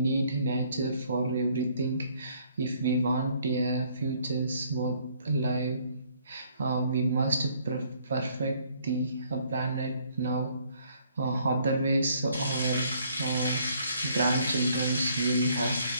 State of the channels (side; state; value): both; inverted; correlation -0.64